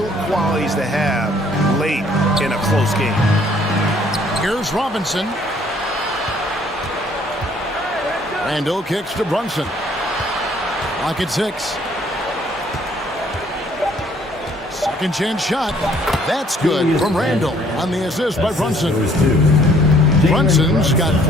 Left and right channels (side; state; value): both; normal; correlation 0.61